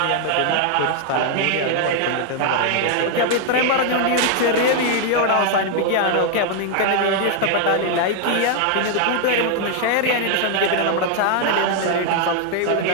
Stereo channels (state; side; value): different; both; correlation 0.00